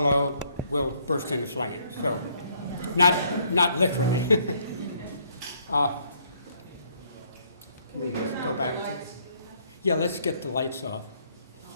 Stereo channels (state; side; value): inverted; both; correlation -0.67